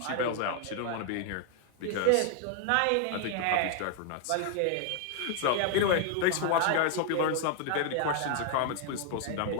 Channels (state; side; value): different; both; correlation 0.00